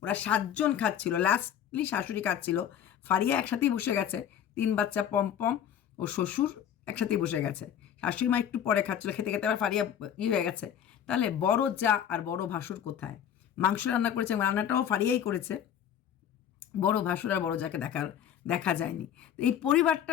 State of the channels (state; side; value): quieter; right; 9.4 dB